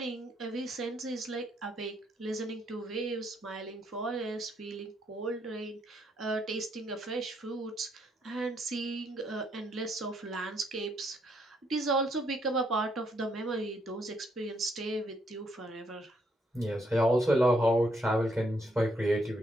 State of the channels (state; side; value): normal; both; correlation 0.73